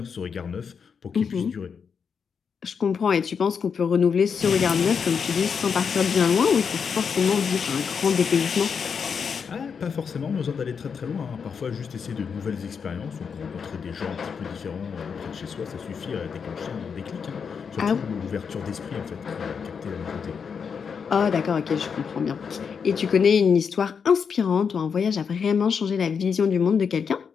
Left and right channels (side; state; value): right; quieter; 6.3 dB